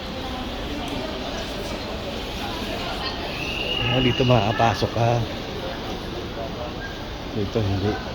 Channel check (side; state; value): both; identical; correlation 1.00